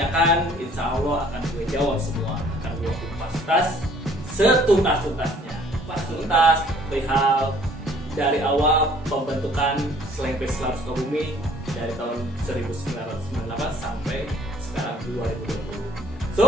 insya Allah akan gue jawab semua. Akan gue kupas setuntas-tuntasnya. Kupas tuntas perihal dari awal pembentukan Slang Face Lab Sukabumi dari tahun 1998 sampai sekarang 2020.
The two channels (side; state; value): both; normal; correlation 0.57